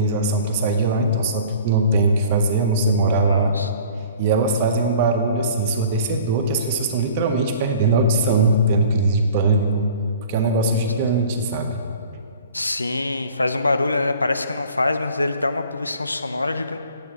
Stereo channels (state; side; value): inverted; both; correlation -0.47